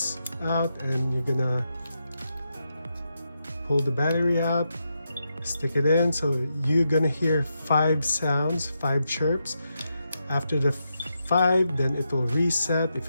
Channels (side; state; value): both; inverted; correlation -0.84